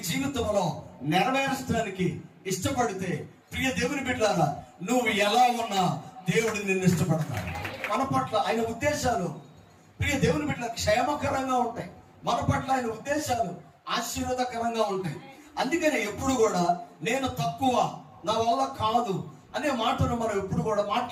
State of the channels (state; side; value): identical; both; correlation 1.00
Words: జీవితంలో నెరవేర్చడానికి ఇష్టపడితే, ప్రియ దేవుని బిడ్డలారా, నువ్వు ఎలా ఉన్నా దేవుడు నిన్ను ఇష్టపడతాడు. మన పట్ల ఆయన ఉద్దేశాలు ప్రియ దేవుని బిడ్డల క్షేమకరంగా ఉంటాయి. మన పట్ల ఆయన ఉద్దేశాలు ఆశీర్వాదకరంగా ఉంటాయి. అందుకని ఎప్పుడు కూడా నేను తక్కువ, నా వల్ల కాదు అనే మాటను మనం ఎప్పుడు కూడా